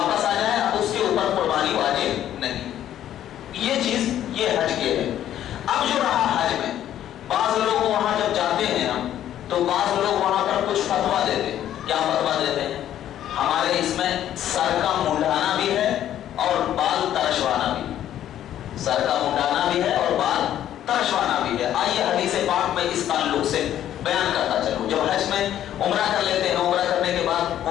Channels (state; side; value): quieter; right; 11.5 dB